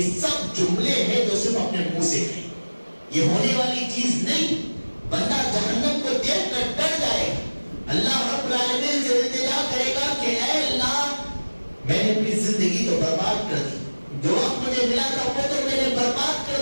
سب جملے ہیں جو صرف اپنے منہ سے کہیں, یہ ہونے والی چیز نہیں. بندہ جہنم کو دیکھ کر ڈر جائے گا, اللہ رب العالمین سے التجا کرے گا کہ اے اللہ میں نے اپنی زندگی تو برباد کر دی, جو وقت مجھے ملا تھا وہ تو میں نے برباد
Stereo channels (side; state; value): both; inverted; correlation -1.00